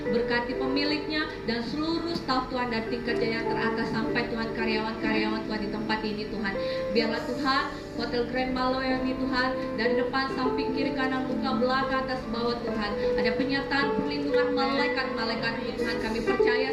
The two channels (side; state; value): both; identical; correlation 1.00